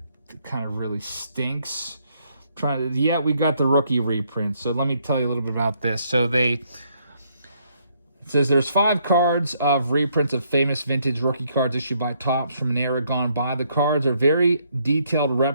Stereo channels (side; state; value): both; inverted; correlation -0.71